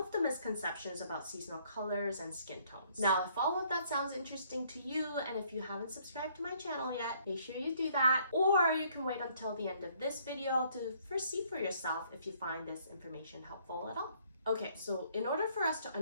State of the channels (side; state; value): both; inverted; correlation -0.64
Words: the misconceptions about seasonal colors and skin tones. Now, if all of that sounds interesting to you, and if you haven't subscribed to my channel yet, make sure you do that, or you can wait until the end of this video to first see for yourself if you find this information helpful at all. Okay, so in order for us to